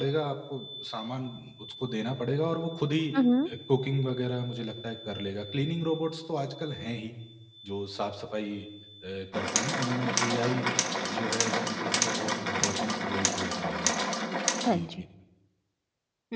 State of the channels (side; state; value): both; identical; correlation 1.00